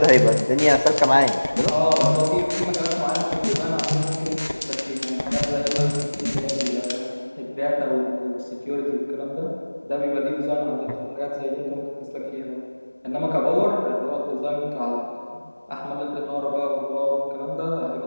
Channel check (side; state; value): both; inverted; correlation -1.00